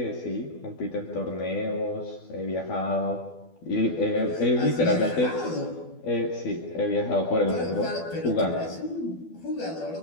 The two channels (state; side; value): late; right; 12 ms